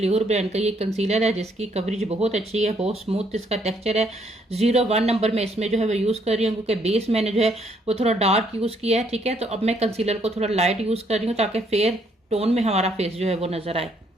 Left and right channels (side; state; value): both; normal; correlation 0.69